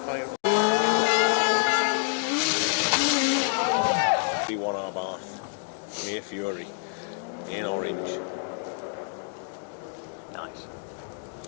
higher. 31R Bath, Mere Fury, in orange. Nice.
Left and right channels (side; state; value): right; silent; 55 dB below the other